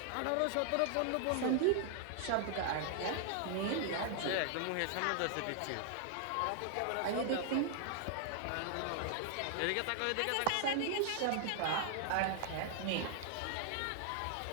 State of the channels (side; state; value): both; different; correlation 0.00